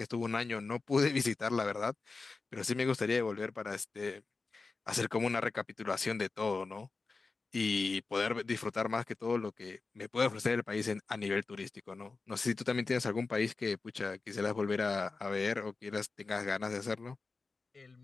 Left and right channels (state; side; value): quieter; right; 4.0 dB